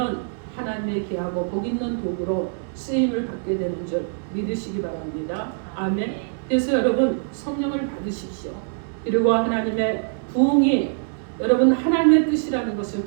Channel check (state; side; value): silent; left; digital silence